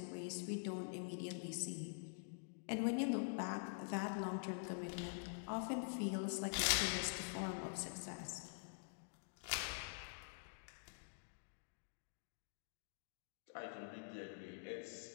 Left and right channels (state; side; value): silent; right; digital silence